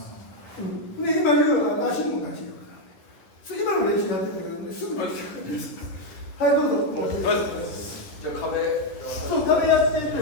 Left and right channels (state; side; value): late; right; 10 ms